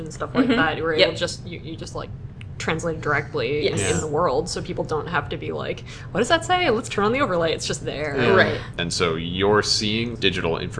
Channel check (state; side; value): identical; both; correlation 1.00